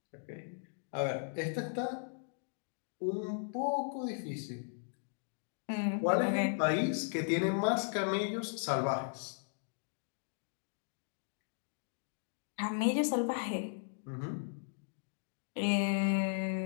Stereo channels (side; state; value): right; silent; digital silence